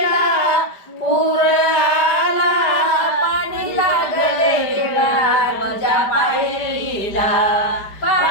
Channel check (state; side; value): late; right; 5.0 ms